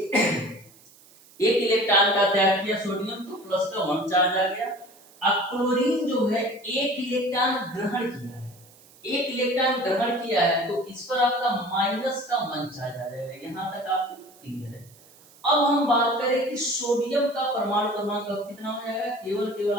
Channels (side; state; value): right; noise; hiss, 26 dB below the sound